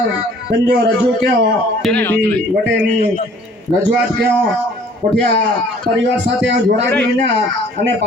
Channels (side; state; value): both; normal; correlation 0.54